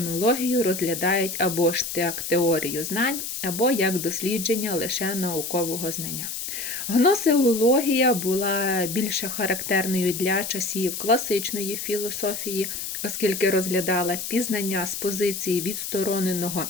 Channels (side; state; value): left; noise; hiss, 5 dB below the sound